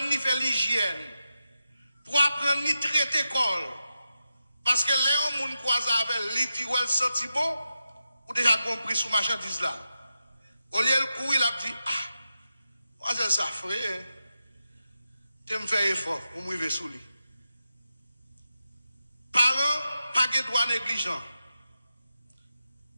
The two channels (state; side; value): inverted; both; correlation -0.90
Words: à faire l'hygiène, pour apprendre à traiter col. Parce que là, on croise avec lui, dit, ouais, senti bon, ou déjà compris sous marchandise là. Au lieu de courir, il a dit, ah, moi, c'est ça, frère. Tu me fais effort pour me lever sous lui. Parents, pas de droit négligent.